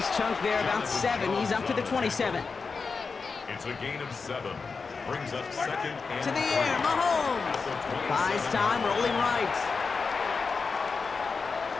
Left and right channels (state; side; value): quieter; right; 4.8 dB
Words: chunk there, about 7. He's up to the 27. It's a gain of 7. Brings up 2nd and To the air, Mahomes. Buys time, rolling right.